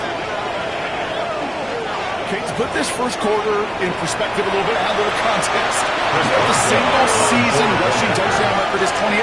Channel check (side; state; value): both; identical; correlation 1.00